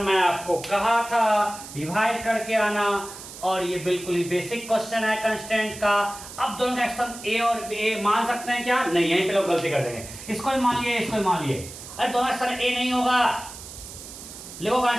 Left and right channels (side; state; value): right; noise; hiss, 13 dB below the sound